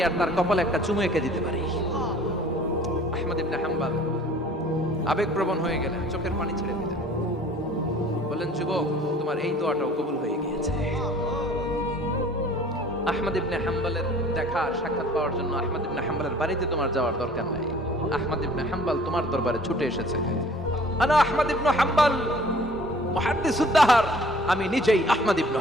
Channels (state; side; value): normal; both; correlation 0.51